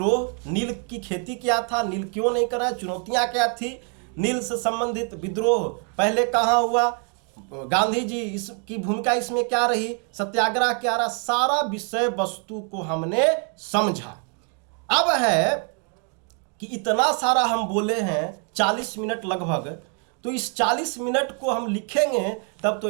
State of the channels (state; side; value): quieter; left; 39.2 dB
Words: नील की खेती क्या था, नील क्यों नहीं करा, चुनौतियां क्या थी, नील से संबंधित विद्रोह पहले कहाँ हुआ, गांधी जी इसकी भूमिका इसमें क्या रही, सत्याग्रह क्या रहा, सारा विषय वस्तु को हमने समझा। अब है कि इतना सारा हम बोले हैं 40 मिनट लगभग, तो इस 40 मिनट को हम लिखेंगे तब तो